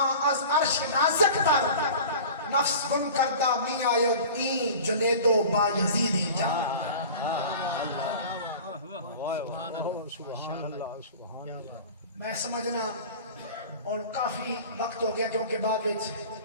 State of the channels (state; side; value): inverted; both; correlation -0.39